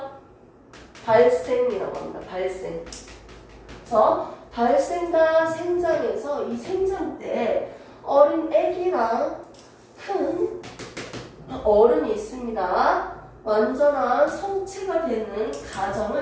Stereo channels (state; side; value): identical; both; correlation 1.00